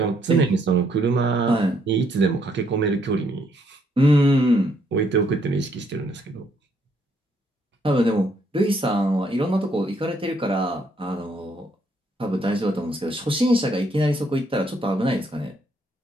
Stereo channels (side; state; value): both; normal; correlation 0.71